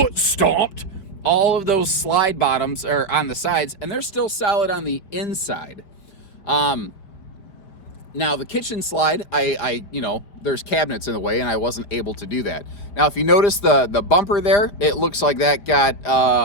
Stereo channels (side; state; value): right; late; 5.1 ms